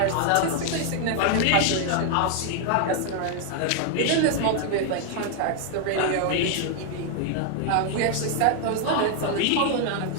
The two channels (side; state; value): both; different; correlation 0.00